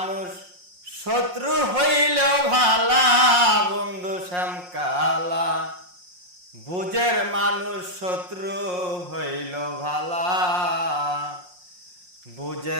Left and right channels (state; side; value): late; left; 5.6 ms